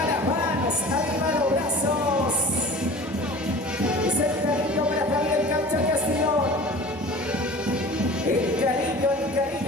las manos, arriba los brazos. Es el cariño para Javier Cancha Castellón. El cariño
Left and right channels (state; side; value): normal; both; correlation 0.41